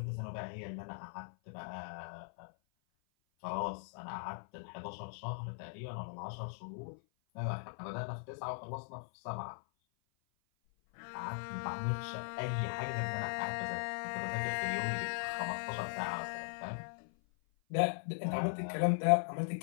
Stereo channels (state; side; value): silent; right; 52 dB below the other